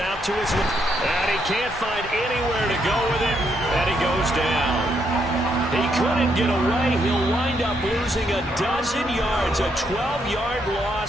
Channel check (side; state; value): both; normal; correlation 0.76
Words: to his left. And he can't find anywhere to go with it. And he goes down. He couldn't get away. He'll wind up losing a dozen yards. A 12-yard